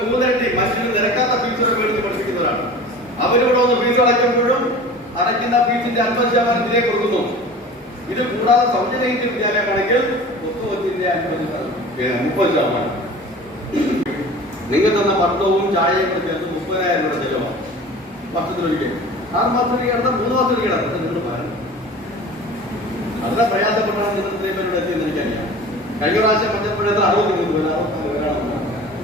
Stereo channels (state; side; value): normal; both; correlation 0.39